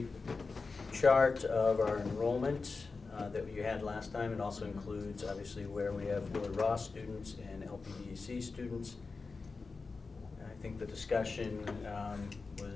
chart of our enrollment that you had last time. It also includes, obviously, where we have Willard Ross students and LPDC students. I think the discussion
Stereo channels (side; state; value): right; quieter; 4.2 dB